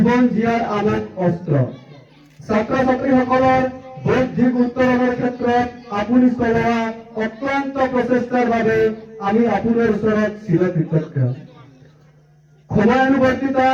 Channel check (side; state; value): both; identical; correlation 1.00